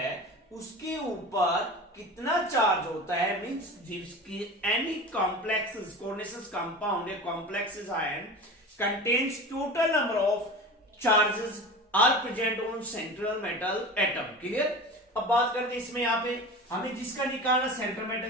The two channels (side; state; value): both; normal; correlation 0.33